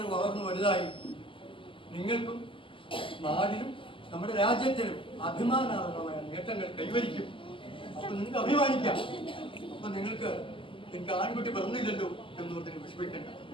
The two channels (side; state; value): right; late; 0.25 ms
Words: വളർന്നു വലുതായി നിങ്ങൾക്കും നാടിനും നമ്മുടെ രാജ്യത്തിനും അഭിമാനാർഹമായ നേട്ടങ്ങൾ കൈവരിക്കും. അപ്പൊ നിങ്ങൾക്ക് അഭിമാനിക്കാം. അപ്പൊ നിങ്ങൾക്ക് എനിക്ക് ആൺകുട്ടി പറഞ്ഞില്ലല്ലോ എന്നോർത്തിന് വിഷമിക്കണ്ട.